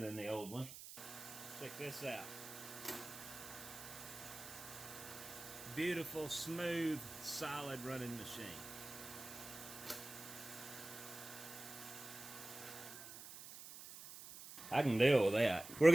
the old one. Check this out. Beautiful, smooth, solid running machine. I can deal with that. We're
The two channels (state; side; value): noise; right; hiss, 13 dB below the sound